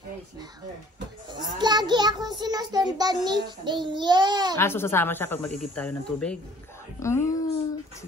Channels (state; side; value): normal; both; correlation 0.54